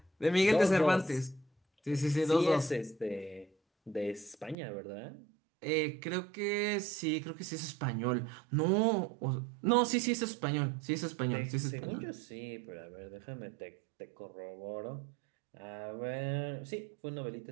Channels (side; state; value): left; drops out; at 4.5 s